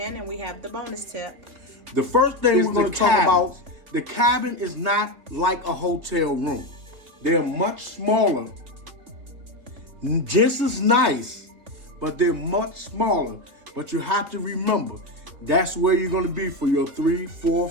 and we have the bonus tip. The first thing we're going to talk about, the cabin is not like a hotel room. They're much smaller, just as nice, but they're much smaller. But you have to remember, that's where you're going to be for your 3, 4,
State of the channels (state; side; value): late; left; 3.5 ms